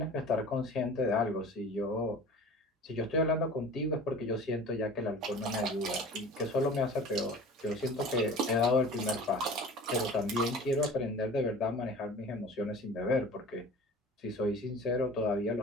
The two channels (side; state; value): both; normal; correlation 0.40